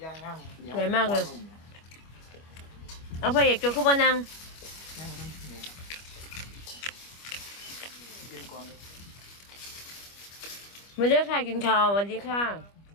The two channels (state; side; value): late; right; 25 ms